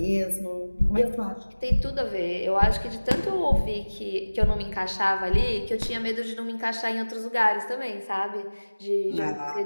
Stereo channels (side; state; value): both; inverted; correlation -1.00